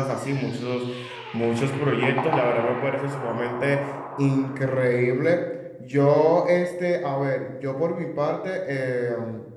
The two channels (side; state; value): both; identical; correlation 1.00